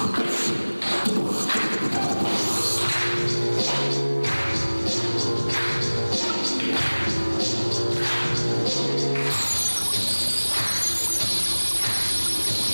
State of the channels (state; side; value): inverted; both; correlation -1.00